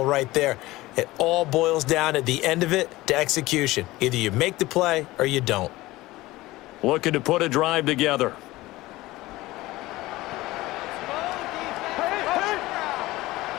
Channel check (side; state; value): right; quieter; 18.6 dB